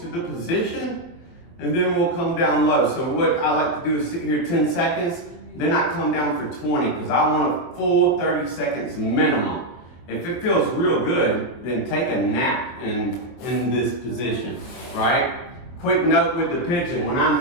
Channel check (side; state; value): right; late; 24 ms